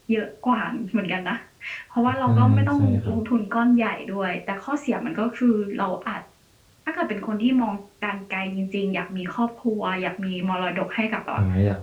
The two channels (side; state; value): both; identical; correlation 1.00